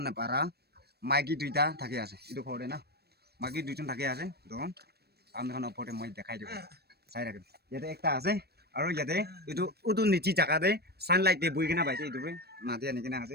না পারা মাইকি দুইটা থাকে আছে এটো পড়ে না মাইকি দুইজন থাকে আছে তো আপনারা পড়ে মই দেখাই দেব চাই রাখেন ইয়াতে একটা আছে আৰু ইয়াতে এটো উদু নিচি জায়গাতে সানলাইট দে বই কিনা পাইছে এটো মাটি আনি কিনা আছে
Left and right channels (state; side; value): late; left; 0.47 ms